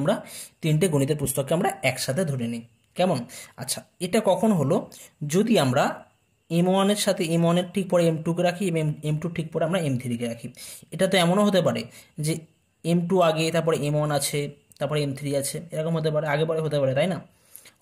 3টে গণিতের পুস্তককে আমরা একসাথে ধরে নিই। কেমন? আচ্ছা, এটা কখন হলো, যদি আমরা M1 এর সাথে M1 এর ঠিক পরে M2 কে রাখি এবং M2 ঠিক পরে আমরা M3 কে রাখি। এটা তো এমনও হতে পারে যে M2 আগে, তারপরে M1 আছে, তারপরে M3 আছে, এরকম হতে পারে, আগে পরে হতে পারে, তাই না?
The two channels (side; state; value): both; identical; correlation 1.00